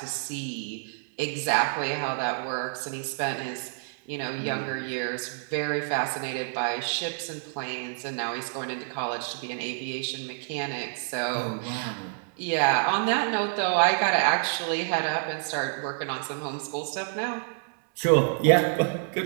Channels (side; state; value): left; silent; digital silence